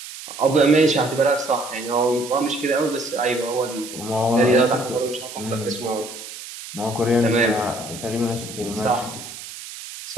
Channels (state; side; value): noise; right; hiss, 12 dB below the sound